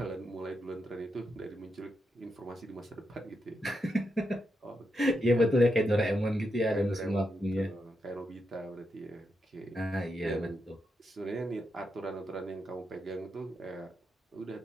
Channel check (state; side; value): normal; both; correlation 0.84